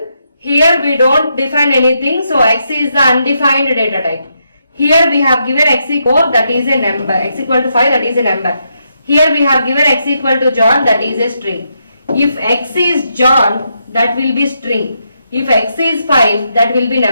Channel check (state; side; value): inverted; both; correlation -0.80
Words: Here we don't define anything, so x is the undefined data type. Here we have given x equal 4, that is a number. X equal to 5, that is a number. Here we have given x equal to John, that is a string. If x is John, that will be string. If x is 5, that will be